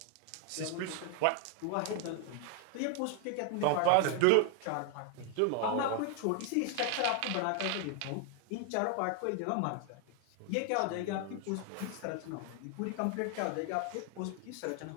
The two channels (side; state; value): both; different; correlation 0.00